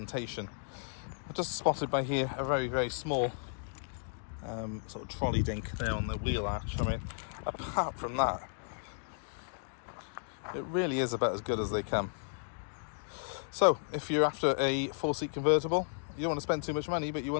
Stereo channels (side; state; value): right; silent; digital silence